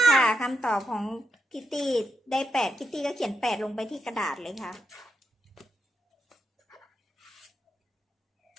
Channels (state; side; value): normal; both; correlation 0.83